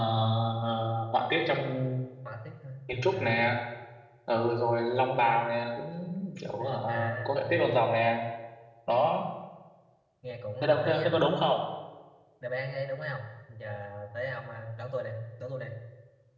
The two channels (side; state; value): both; identical; correlation 1.00